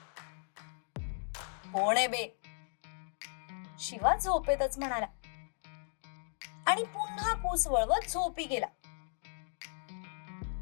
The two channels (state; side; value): silent; right; 54 dB below the other